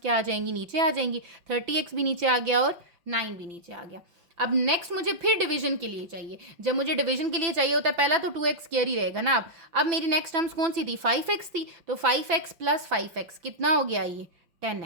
आ जाएंगी, नीचे आ जाएंगी। 30x भी नीचे आ गया और 9 भी नीचे आ गया। अब नेक्स्ट मुझे फिर डिवीजन के लिए चाहिए। जब मुझे डिवीजन के लिए चाहिए होता है पहला तो 2x स्क्वायर ही रहेगा ना। अब मेरी नेक्स्ट टर्म्स कौन सी थी, 5x थी, तो 5x प्लस 5x कितना हो गया, ये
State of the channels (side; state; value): left; late; 6.0 ms